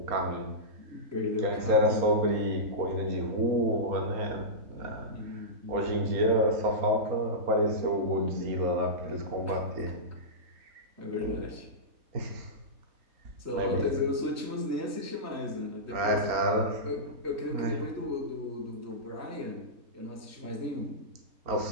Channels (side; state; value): left; late; 4.2 ms